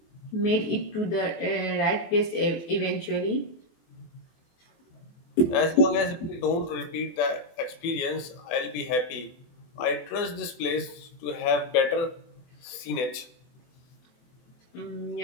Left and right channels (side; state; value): right; late; 24 ms